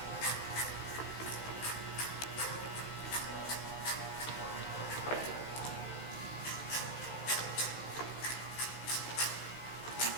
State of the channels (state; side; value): late; right; 15 ms